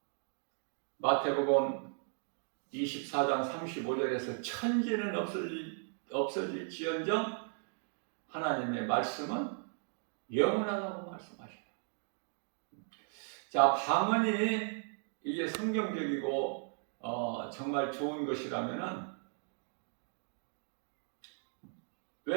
마태복음 24장 35절에서 천지는 없어질지언정 하나님의 말씀은 영원하다고 말씀하셔요. 자, 방언이 이게 성경적이고 정말 좋은 것이라면은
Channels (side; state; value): left; silent; 53 dB below the other